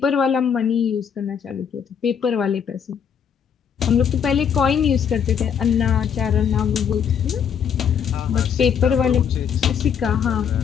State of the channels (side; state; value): right; quieter; 7.6 dB